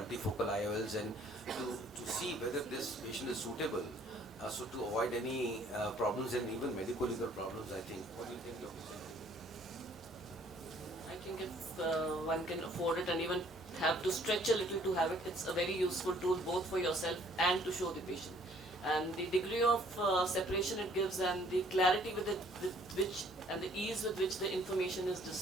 IOLs, and to see whether this patient is suitable, so to avoid any problems and even medical legal problems, I think. What do you think, Dr. I think if one can afford it and even have to stretch a little to have it, it's a very useful tool both for yourself and to show the patient. And the degree of separation it gives and the clarity with which and the ease with which the information is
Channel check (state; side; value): normal; both; correlation 0.60